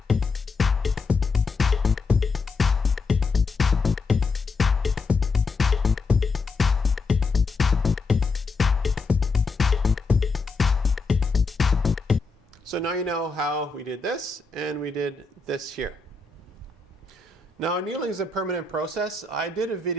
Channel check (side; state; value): right; quieter; 4.1 dB